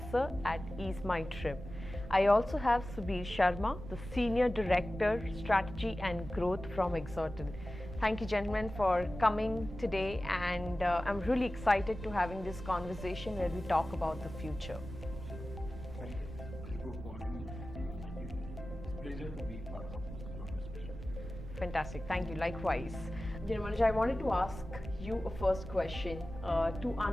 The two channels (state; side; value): noise; right; rumble, 11 dB below the sound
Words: at Ease My Trip. I also have Subir Sharma, the Senior Director, Strategy and Growth from Exotel. Thank you, gentlemen, for coming today, and I'm really excited to having this conversation where we talk about the future. Sure. Thank you, Khushbu, for calling me. Thank you. It's a pleasure to be part of your discussion. Fantastic. Thank you. Likewise. Manoj, I wanted to ask you a first question to